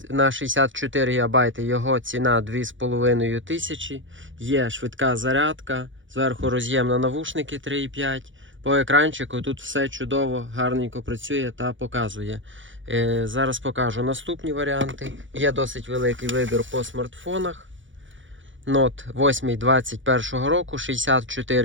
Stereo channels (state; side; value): late; left; 0.56 ms